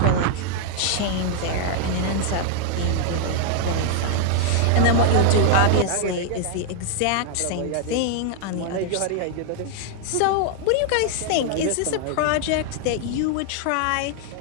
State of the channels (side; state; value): both; different; correlation 0.00